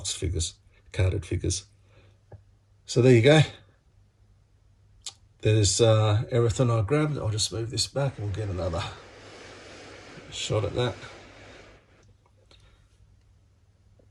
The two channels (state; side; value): identical; both; correlation 1.00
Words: figures, carded figures. So there you go. There's everything I grabbed. I'll just move this back and we'll get another shot at that.